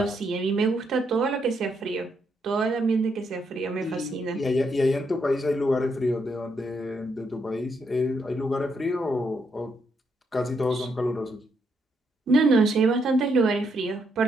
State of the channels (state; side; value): normal; both; correlation 0.77